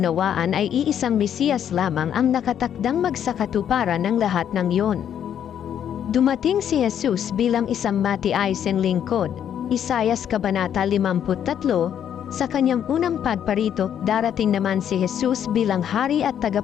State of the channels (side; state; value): right; quieter; 9.4 dB